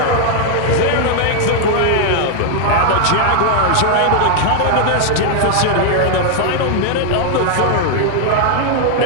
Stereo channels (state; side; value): different; both; correlation 0.00